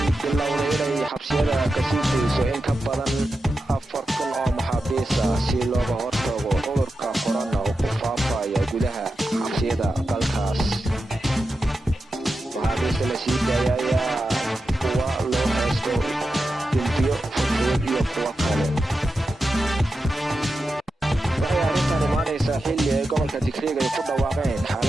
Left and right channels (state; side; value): normal; both; correlation 0.90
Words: bilowday inay xabsiyada ka sii deyso in ka badan 4,000 oo maxaabiis ah si looga hortago cudurka corona oo ku faafaya gudaha xabsiyada dalkaas. maxaabiista la sii daayay ayaa kuwa loo haysto dambiyo fudud iyo kuwa kale. waxay arrintan imaanaysaa xilli ay gobolka Tigreega ay ku dhawaaqeen